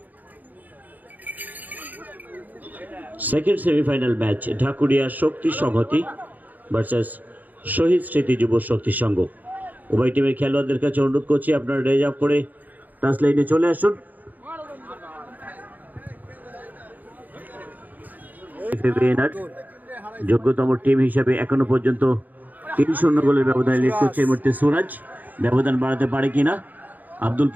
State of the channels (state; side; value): late; left; 0.082 ms